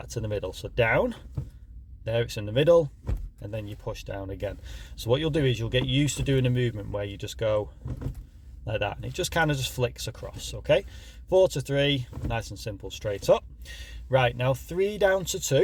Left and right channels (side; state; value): both; identical; correlation 1.00